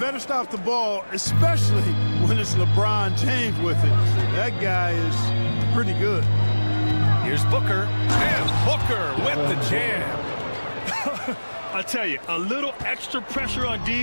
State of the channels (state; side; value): inverted; both; correlation -1.00